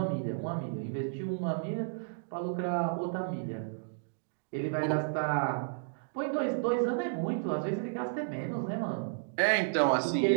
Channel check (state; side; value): silent; left; digital silence